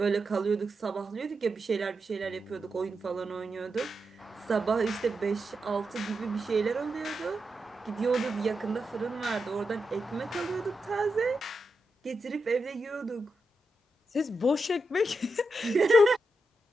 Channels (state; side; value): normal; both; correlation 0.87